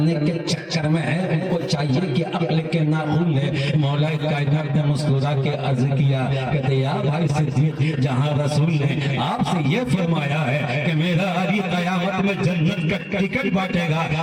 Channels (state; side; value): identical; both; correlation 1.00